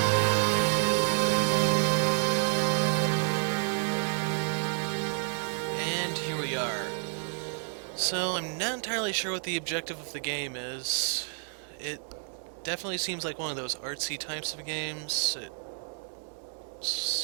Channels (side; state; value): left; silent; 58 dB below the other